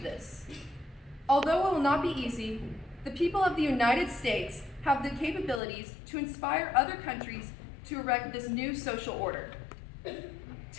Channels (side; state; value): right; drops out; at 5.6 s